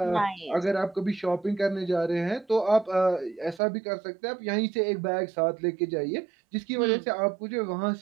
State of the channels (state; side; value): drops out; left; at 3.6 s